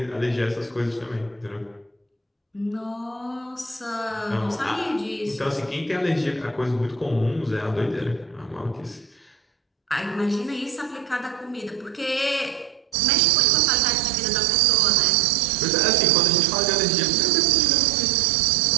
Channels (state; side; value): drops out; left; at 13.0 s